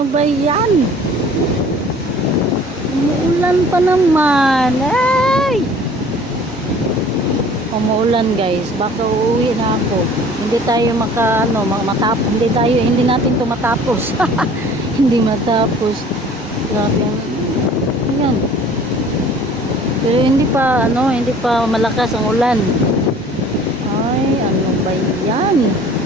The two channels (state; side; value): normal; both; correlation 0.49